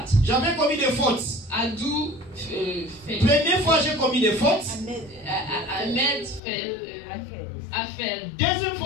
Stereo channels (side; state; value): right; drops out; at 6.4 s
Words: j'avais commis des fautes. I do fail. Première fois, j'ai commis des fautes. I made fail. I failed. Deuxième